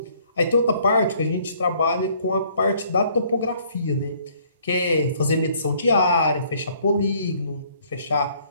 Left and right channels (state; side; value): inverted; both; correlation -0.62